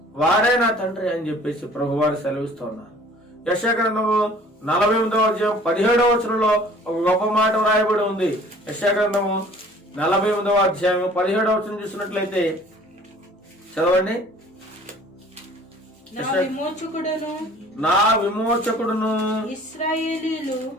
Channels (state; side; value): normal; both; correlation 0.51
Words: వారే నా తండ్రి అని చెప్పేసి ప్రభువారు సెలవిస్తూ ఉన్నారు. యెషయా గ్రంథము 48వ అధ్యాయం 17వ వచనంలో ఒక గొప్ప మాట వ్రాయబడి ఉంది. యెషయా గ్రంథము 48వ అధ్యాయం 17వ వచనం చూసినట్లయితే చదవండి. నా విమోచకుడును